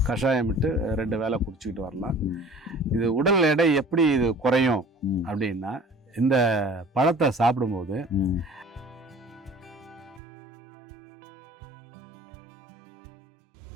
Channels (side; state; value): left; drops out; at 10.2 s